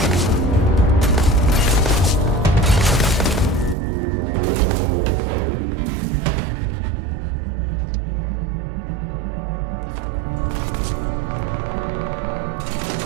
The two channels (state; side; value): drops out; left; at 3.8 s